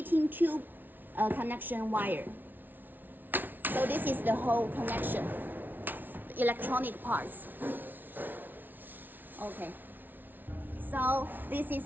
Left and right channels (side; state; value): left; late; 0.088 ms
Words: tube connection wire. So this is the whole connection, the electronic parts. Okay. So this